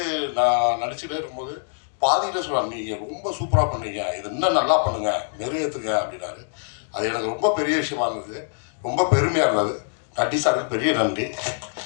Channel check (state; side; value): silent; right; digital silence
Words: நான் நடிச்சுட்டே இருக்கும்போது பாதியில் சொல்லுவாங்க, நீங்கள் ரொம்ப சூப்பராக பண்ணீங்க, இது இன்னும் நல்லா பண்ணுங்கள், நிறைவேற்றுங்க அப்படின்னாரு. அது எனக்கு ரொம்ப பெரிய விஷயமா இருந்தது, ரொம்ப பெருமையாக இருந்தது. நட்டி சாருக்கு பெரிய நன்றி.